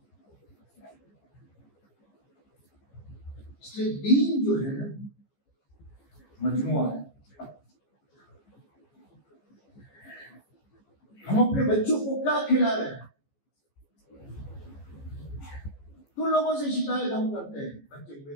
इसलिए दीन जो है ना मजमुआ है। हम अपने बच्चों को क्या खिला रहे हैं? तो लोगों से शिकायत हम करते हैं, बच्चे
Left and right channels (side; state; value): right; late; 14 ms